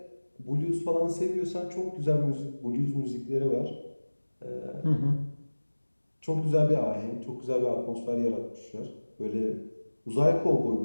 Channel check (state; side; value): inverted; both; correlation -1.00